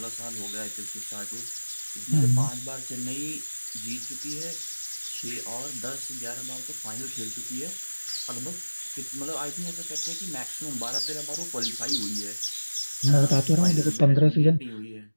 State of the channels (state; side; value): inverted; both; correlation -1.00